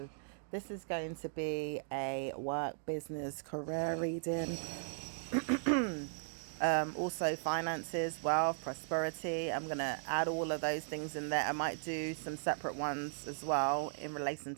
this is going to be a work, business, career reading. Also finances, wealth, prosperity. I'm gonna add all of those things in there. I might do some separate ones as well in relation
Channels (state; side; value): silent; left; digital silence